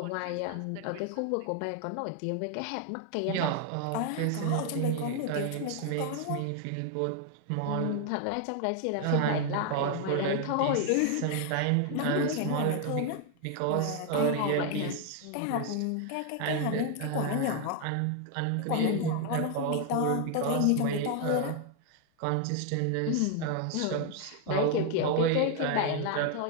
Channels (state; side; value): different; both; correlation 0.00